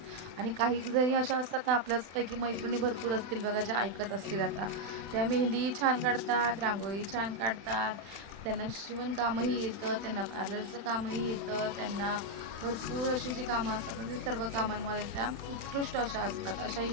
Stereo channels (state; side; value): late; left; 36 ms